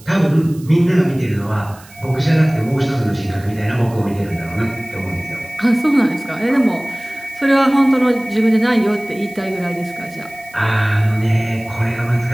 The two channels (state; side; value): noise; right; hiss, 23 dB below the sound